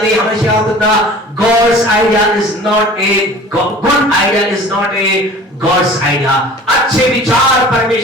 हमेशा याद रखना God's idea is not a good idea, is not a God's idea. अच्छे विचार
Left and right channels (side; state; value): both; normal; correlation 0.44